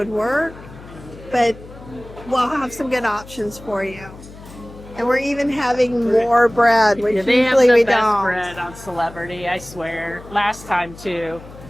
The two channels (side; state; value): left; noise; hum, 18 dB below the sound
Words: work. But we'll have some good options for you. And we're even having more bread, which Yeah, they have usually the we best don't. bread on Celebrity, I swear. Last time too.